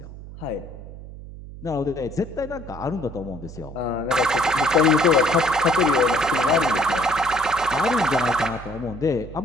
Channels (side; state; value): right; noise; hum, 14 dB below the sound